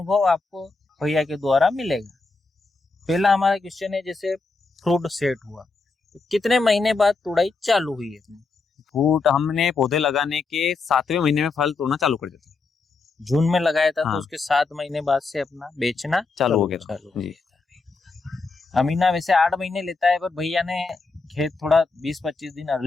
आपको भैया के द्वारा मिलेगा। पहला हमारा क्वेश्चन है, जैसे फ्रूट सेट हुआ तो कितने महीने बाद तुड़ाई चालू हुई है? फ्रूट हमने पौधे लगाने के 7वें महीने में फल तोड़ना चालू कर दिया था। जून में लगाया था। हाँ। तो उसके 7 महीने बाद से अपना बेचना चालू हो गया था। जी। अमीना वैसे 8 महीने लेता है, पर भैया ने खेत थोड़ा 20-25 दिन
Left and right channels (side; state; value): right; quieter; 4.0 dB